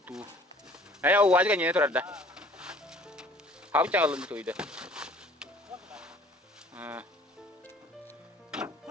тут. А я у вас гоню это рада. How чало на то иде.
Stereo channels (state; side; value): normal; both; correlation 0.52